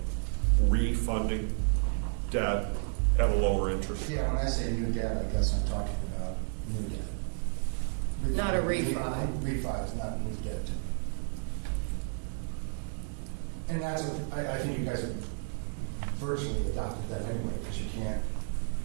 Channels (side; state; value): left; silent; 57 dB below the other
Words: refunding debt at a lower interest. Yeah, when I say new debt, I guess I'm talking about new debt. Not a refi. Refi is not new debt to me. And that's I think you guys have virtually adopted that anyway, because you can't,